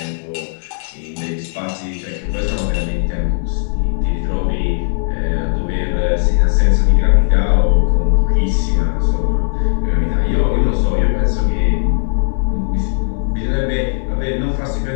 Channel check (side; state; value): right; silent; digital silence